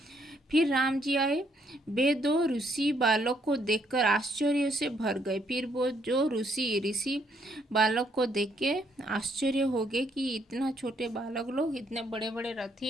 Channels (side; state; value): both; normal; correlation 0.71